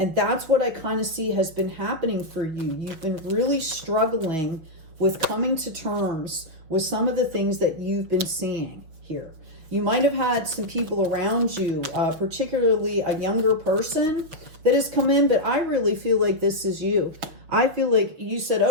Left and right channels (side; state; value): left; late; 6.1 ms